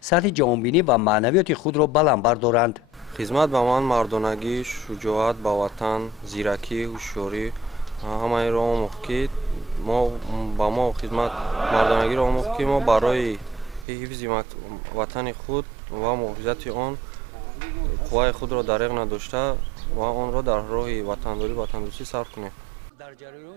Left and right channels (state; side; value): drops out; left; at 13.9 s